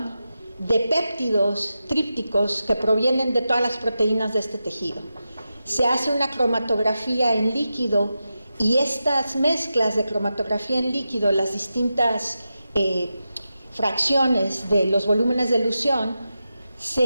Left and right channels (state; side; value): inverted; both; correlation -0.90